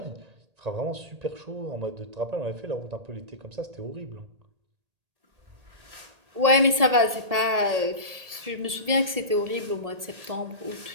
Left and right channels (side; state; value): left; late; 1.7 ms